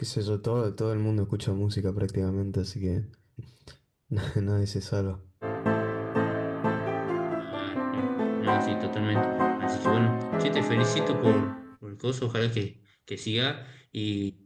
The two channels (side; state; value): both; identical; correlation 1.00